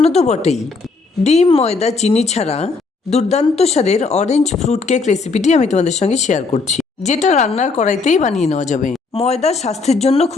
তো বটেই। ডিম, ময়দা, চিনি ছাড়া দুর্দান্ত স্বাদের অরেঞ্জ ফ্রুট কেক রেসিপিটি আমি তোমাদের সঙ্গে শেয়ার করছি, যেটা রান্নার কড়াইতেই বানিয়ে নেওয়া যাবে। ময়দা স্বাস্থ্যের জন্য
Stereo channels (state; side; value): quieter; right; 4.2 dB